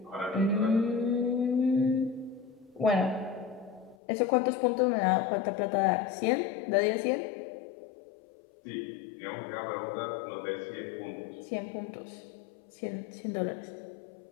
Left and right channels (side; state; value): right; drops out; at 4.0 s